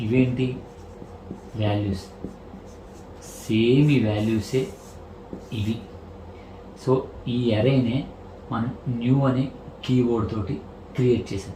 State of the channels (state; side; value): identical; both; correlation 1.00